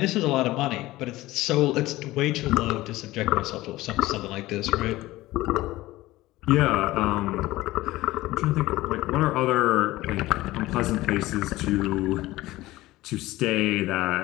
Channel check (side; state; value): right; quieter; 17.8 dB